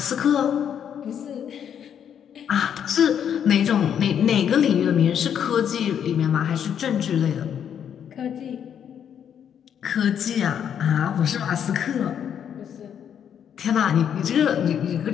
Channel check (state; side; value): quieter; right; 8.7 dB